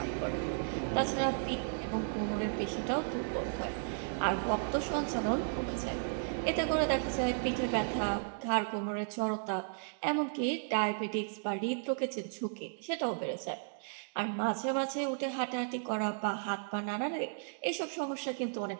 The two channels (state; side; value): silent; left; digital silence